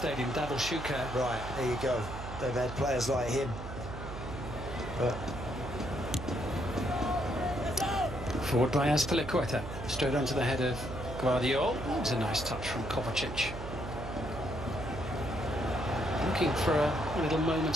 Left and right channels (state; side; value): noise; right; hum, 9 dB below the sound